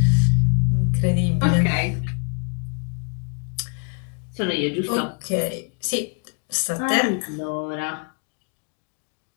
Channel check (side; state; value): right; quieter; 38.0 dB